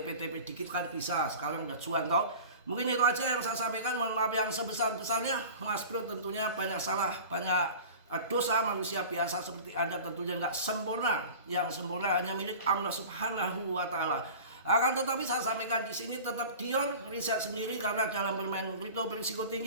dikit kan bisa, sekarang udah cuan toh. Mungkin itu aja yang saya sampaikan, mohon maaf yang sebesar-besarnya. Mas Bro tentunya banyak salah, banyak dosa, manusia biasa seperti Anda tentunya nggak sempurna, yang sempurna hanya milik Allah Subhanahu wa Ta'ala. Akan tetapi saya sampaikan di sini tetap Dion riset sendiri, karena dalam bermain kripto berisiko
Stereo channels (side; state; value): both; inverted; correlation -0.38